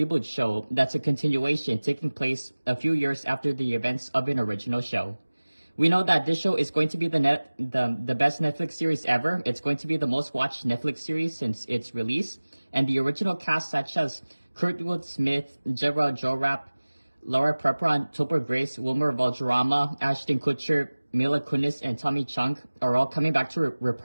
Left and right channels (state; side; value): inverted; both; correlation -1.00